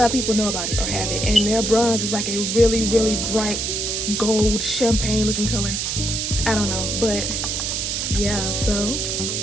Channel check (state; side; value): noise; right; hiss, 1 dB below the sound